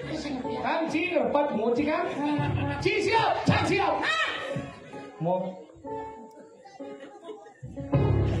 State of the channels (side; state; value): both; identical; correlation 1.00